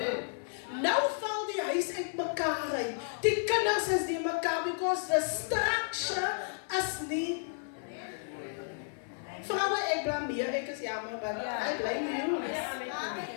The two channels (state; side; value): silent; right; 56 dB below the other